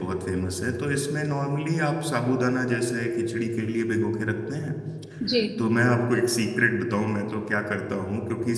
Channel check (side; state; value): both; identical; correlation 1.00